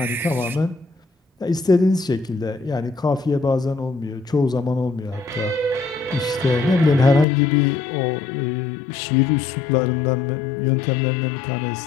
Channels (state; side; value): drops out; right; at 7.2 s